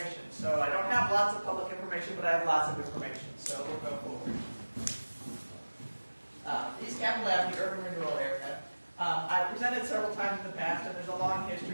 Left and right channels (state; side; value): inverted; both; correlation -1.00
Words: So I don't have lots of public information, but I have lots of information. So we'll go forward. East Capitol Avenue Urban Renewal Area. I've presented several times in the past, and there's a long